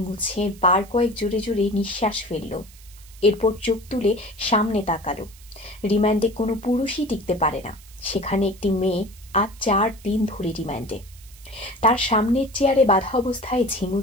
মুছে বার কয়েক জোরে জোরে নিঃশ্বাস ফেলল। এরপর চোখ তুলে সামনে তাকালো। রিমান্ডে কোনো পুরুষই টিকতে পারে না, সেখানে একটি মেয়ে আজ 4 দিন ধরে রিমান্ডে। তার সামনের চেয়ারে বাঁধা অবস্থায়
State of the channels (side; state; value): right; noise; hiss, 23 dB below the sound